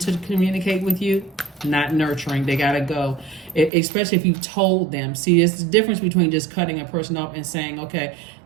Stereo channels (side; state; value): left; drops out; at 3.7 s